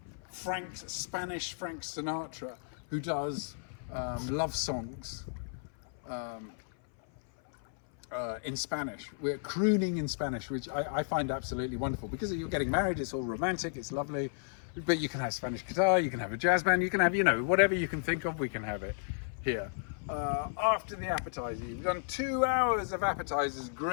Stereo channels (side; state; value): right; silent; 56 dB below the other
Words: Spanish Frank Sinatra who does love songs in Spanish. We're crooning in Spanish, which I find absolutely wonderful, because you're getting married, it's all romantic, it's lovely, but you can have Spanish guitar, you can have a jazz band, you can have, whatever you can think of, we can have it here. After the appetizer, we've done 2 hours of appetizers